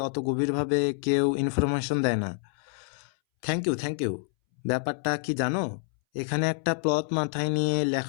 অত গভীরভাবে কেউ ইনফরমেশন দেয় না। Thank you, thank you. ব্যাপারটা কি জানো, এখানে একটা প্লট মাথায় নিয়ে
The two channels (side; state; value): right; silent; 60 dB below the other